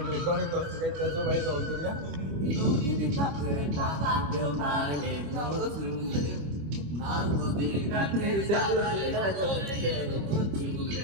রেকর্ডিং করতে যাইতে সবাই দল করিয়া নদীর কাছে টাকা দেও না রে নতুলে না নদীর কাছে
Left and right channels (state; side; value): late; left; 25 ms